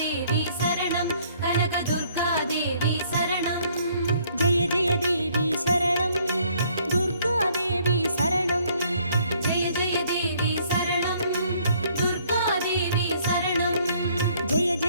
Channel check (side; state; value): both; inverted; correlation -0.63